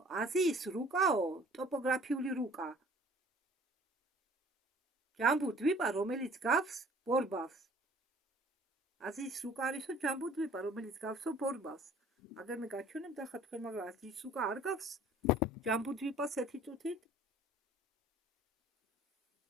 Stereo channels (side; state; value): both; normal; correlation 0.52